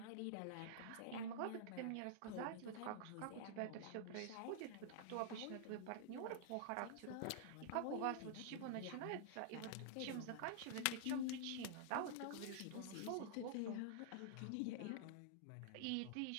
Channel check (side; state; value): both; different; correlation -0.01